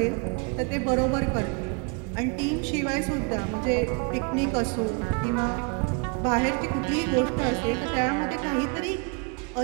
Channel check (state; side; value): quieter; left; 33.6 dB